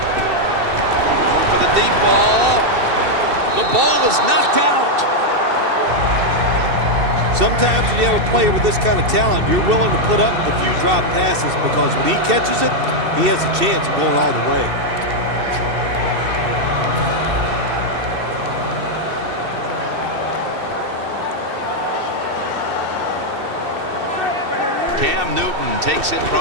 for the deep ball. The ball is knocked out. Sometimes when you have a player with this kind of talent, you're willing to put up with a few drop passes because when he catches it, he has a chance of going all the way. Cam Newton takes it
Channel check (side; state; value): left; late; 2.7 ms